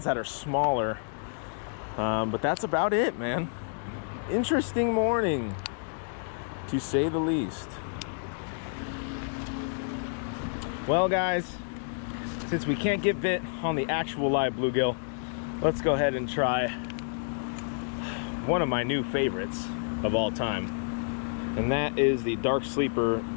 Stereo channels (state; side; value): silent; right; digital silence